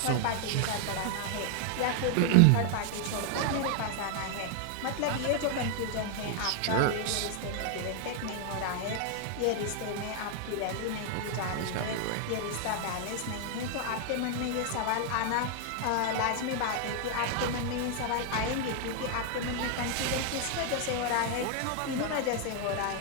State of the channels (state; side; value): different; both; correlation 0.00